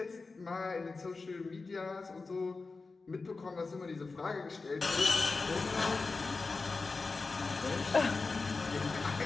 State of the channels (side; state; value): right; quieter; 4.0 dB